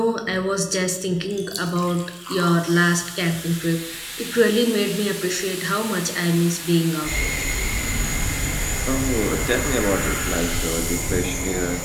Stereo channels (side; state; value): both; identical; correlation 1.00